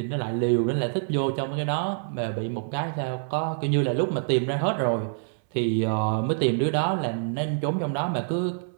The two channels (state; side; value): silent; left; 61 dB below the other